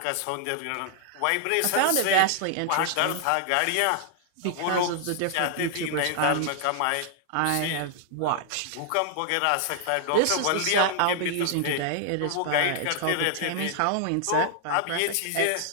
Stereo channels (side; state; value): both; different; correlation 0.00